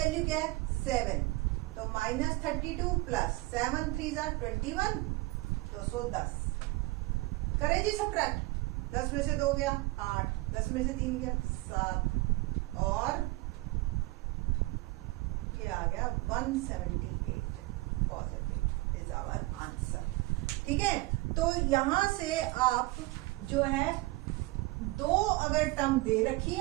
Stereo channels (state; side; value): quieter; left; 21.7 dB